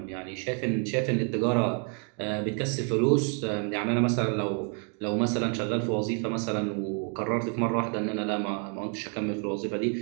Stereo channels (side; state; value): left; quieter; 39.8 dB